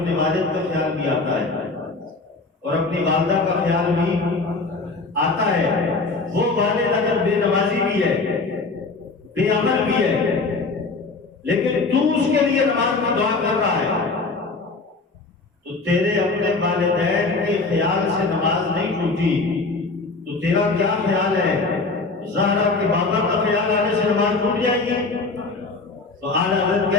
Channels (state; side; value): quieter; right; 3.8 dB